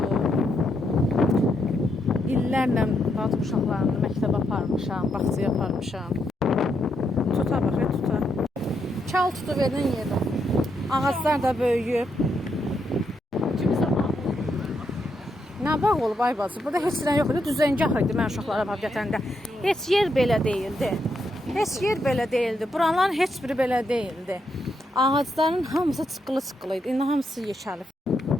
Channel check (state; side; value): normal; both; correlation 0.80